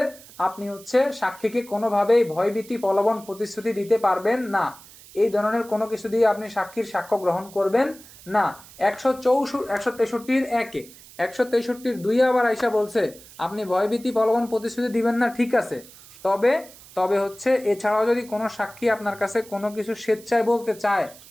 আপনি হচ্ছে সাক্ষীকে কোনোভাবেই ভয়ভীতি প্রলোভন প্রতিশ্রুতি দিতে পারবেন না, এই ধরনের কোনো কিছু দিয়ে আপনি সাক্ষীর সাক্ষ্য গ্রহণ করবেন না। 163 আবার আইসা বলছে আপনি ভয়ভীতি প্রলোভন প্রতিশ্রুতি দিবেন না, ঠিক আছে, তবে হচ্ছে এছাড়াও যদি কোনো সাক্ষী আপনার কাছে কোনো কিছু স্বেচ্ছায় বলতে চায়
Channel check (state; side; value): noise; right; hiss, 21 dB below the sound